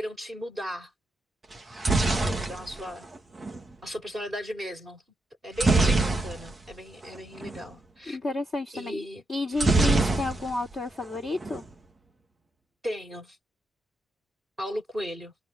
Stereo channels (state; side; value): normal; both; correlation 0.83